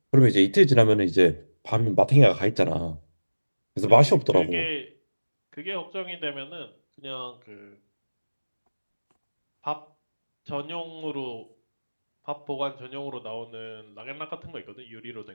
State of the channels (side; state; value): both; inverted; correlation -1.00